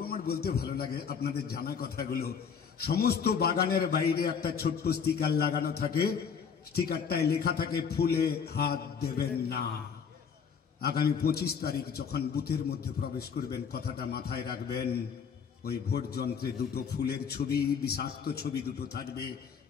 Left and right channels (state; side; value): quieter; right; 6.6 dB